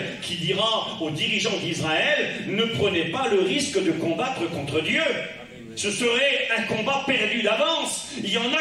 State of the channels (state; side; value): identical; both; correlation 1.00